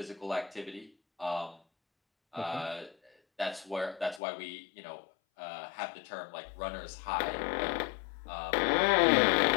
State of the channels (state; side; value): drops out; right; at 4.2 s